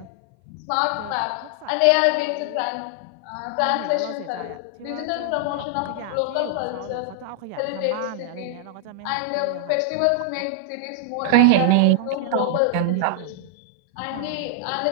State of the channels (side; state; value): both; different; correlation 0.00